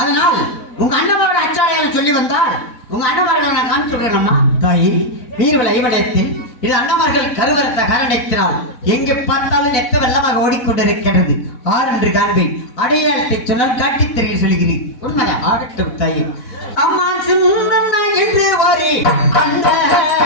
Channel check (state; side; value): late; right; 4.1 ms